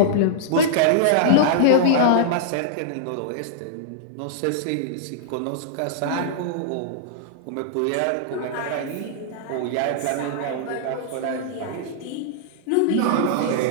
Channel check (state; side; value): different; both; correlation -0.02